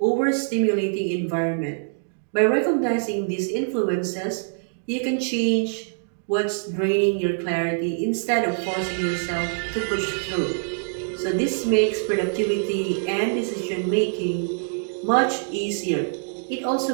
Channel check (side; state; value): left; silent; digital silence